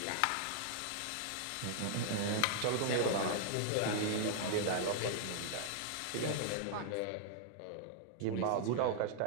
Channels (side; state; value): both; different; correlation -0.01